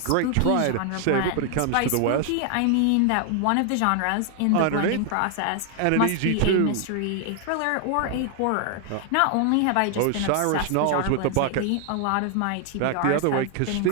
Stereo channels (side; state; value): both; different; correlation 0.00